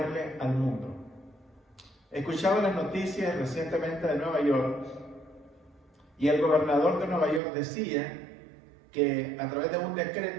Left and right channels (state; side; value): drops out; left; at 7.4 s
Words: al mundo? Escuchaba las noticias recientemente de Nueva York y el gobernador de Nueva York decía que a través de un